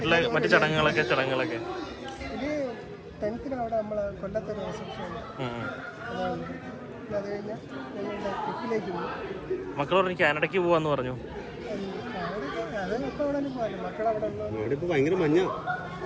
മറ്റു ചടങ്ങുകളൊക്കെ ഇത് 10th അവിടെ നമ്മൾ കൊല്ലത്തൊരു റിസപ്ഷൻ അത് കഴിഞ്ഞാൽ ഞങ്ങളുടെ ട്രിപ്പിലേക്ക് പോകും. മക്കൾ പറഞ്ഞു കാനഡയ്ക്ക് പോവാന്ന് പറഞ്ഞു. അതൊക്കെ അവിടെ പോകാൻ മക്കളവിടെ ഭയങ്കര മഞ്ഞ,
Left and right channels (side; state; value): both; identical; correlation 1.00